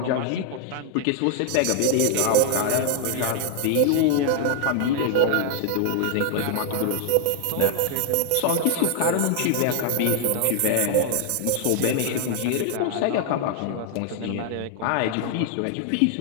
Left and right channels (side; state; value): both; different; correlation 0.00